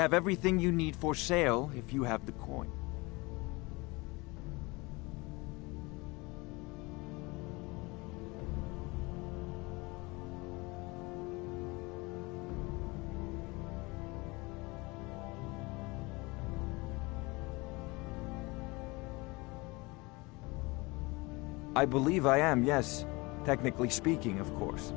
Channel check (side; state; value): right; quieter; 24.7 dB